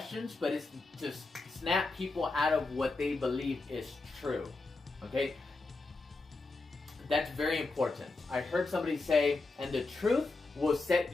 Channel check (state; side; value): quieter; right; 3.5 dB